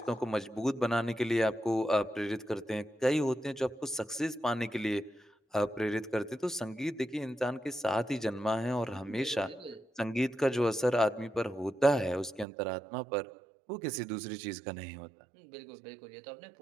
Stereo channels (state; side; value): drops out; left; at 12.5 s